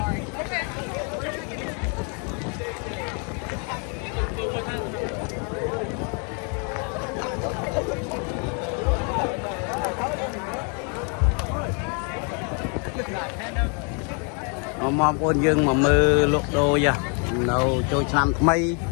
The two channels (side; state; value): right; quieter; 37.9 dB